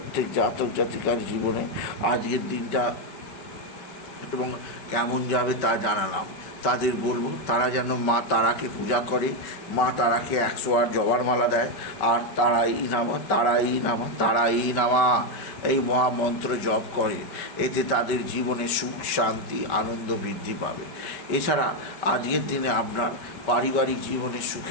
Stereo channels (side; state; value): right; late; 5.2 ms